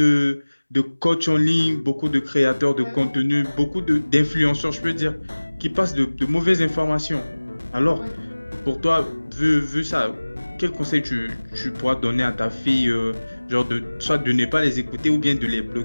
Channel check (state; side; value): inverted; both; correlation -1.00